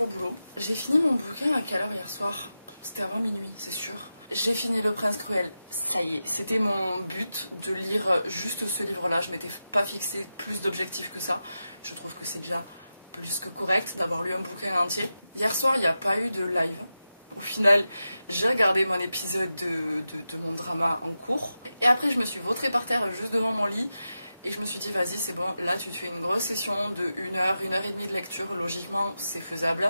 au boulot. J'ai fini mon bouquin à quelle heure hier soir? C'était avant minuit, c'est sûr. J'ai fini Le Prince Cruel, ça y est, c'était mon but de lire juste ce livre-là. Je m'étais pas fixé plus d'objectifs que ça. Je trouve que c'est déjà plus que correct d'avoir lu un bouquin entier. Hier soir, il n'y a pas eu de live. Au final, j'ai regardé mon épisode de mon drama en cours. Et après, je me suis vautrée par terre juste devant mon lit. Et je me suis dit, vas-y, c'est bon, là tu te fais une grosse session de 1 heure, 1 heure et demie de lecture. Logiquement, c'est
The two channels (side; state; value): both; inverted; correlation -0.91